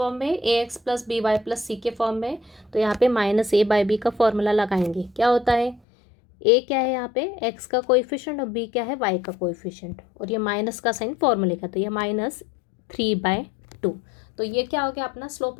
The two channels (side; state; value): right; drops out; at 5.8 s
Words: में, ax plus B Y plus C के फॉर्म में। तो यहाँ पे -a बाई बी का फॉर्मूला लगाएंगे, क्या होता है, a क्या है यहाँ पे x का कोएफिशिएंट और b क्या है y का कोएफिशिएंट, और ये माइनस का साइन फॉर्मूले का, तो ये -3/2। तो ये क्या हो गया, अपना स्लोप